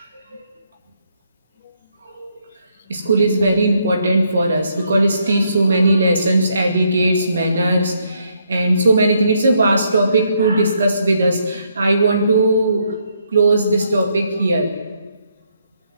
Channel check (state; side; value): inverted; both; correlation -0.74